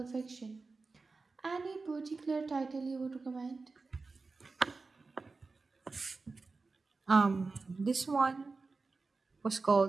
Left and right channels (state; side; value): quieter; left; 4.0 dB